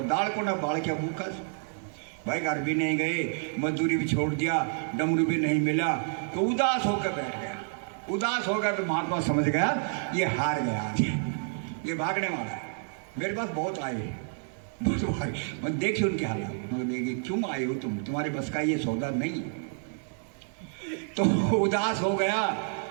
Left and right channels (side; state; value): left; silent; 59 dB below the other